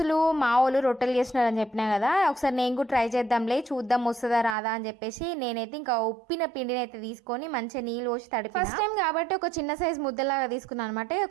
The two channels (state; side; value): drops out; left; at 4.5 s